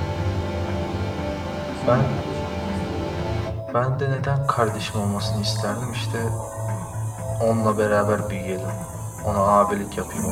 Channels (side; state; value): both; identical; correlation 1.00